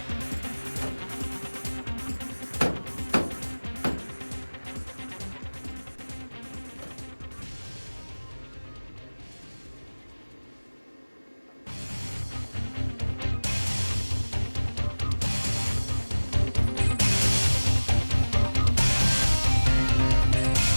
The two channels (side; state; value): both; inverted; correlation -1.00